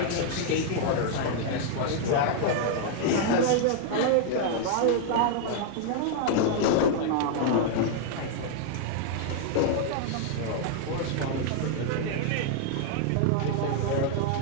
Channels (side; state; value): both; different; correlation -0.01